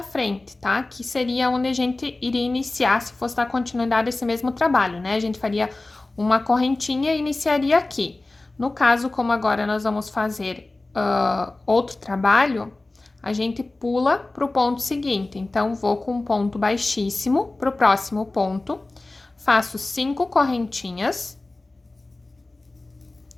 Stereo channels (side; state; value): right; quieter; 3.0 dB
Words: frente, tá? Que seria onde a gente iria iniciar se fosse dar continuidade a esse mesmo trabalho, né? A gente faria uma correntinha e iniciaria aqui. No caso, como agora nós vamos fazer outro trabalho, a gente pula para o ponto seguinte. Então, vou com um ponto baixíssimo para o próximo ponto, faço 5 correntinhas,